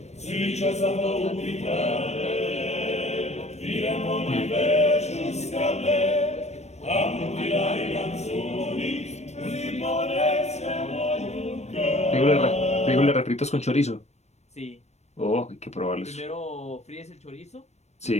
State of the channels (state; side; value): late; right; 0.32 ms